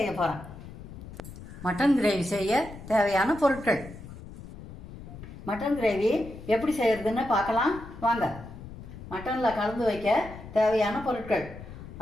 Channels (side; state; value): left; noise; rumble, 14 dB below the sound